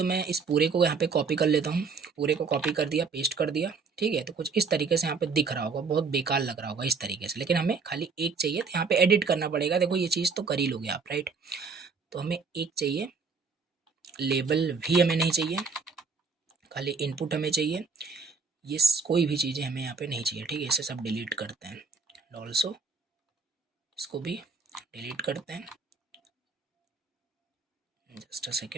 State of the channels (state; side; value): quieter; left; 5.0 dB